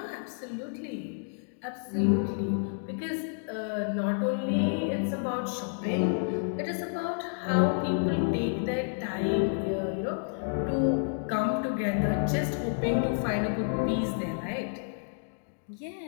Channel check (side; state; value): right; silent; digital silence